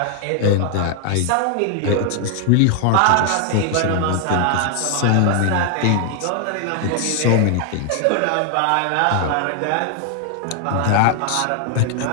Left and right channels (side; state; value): both; different; correlation 0.00